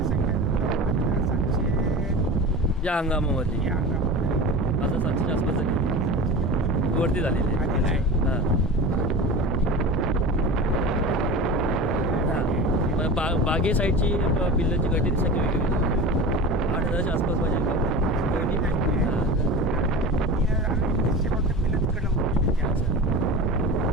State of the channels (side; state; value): both; normal; correlation 0.31